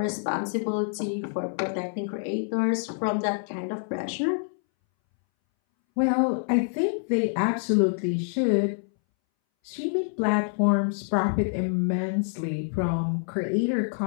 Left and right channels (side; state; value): right; silent; 61 dB below the other